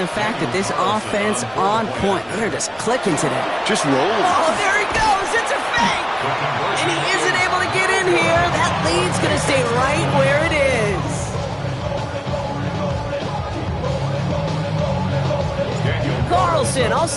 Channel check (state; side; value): identical; both; correlation 1.00